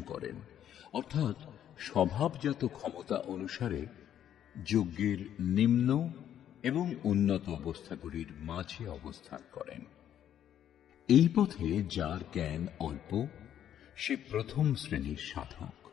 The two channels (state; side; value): quieter; right; 10.4 dB